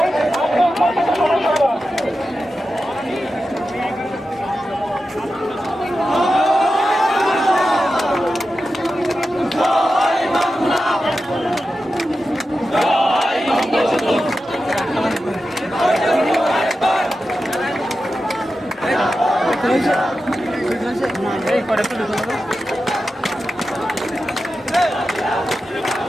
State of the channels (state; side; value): normal; both; correlation 0.91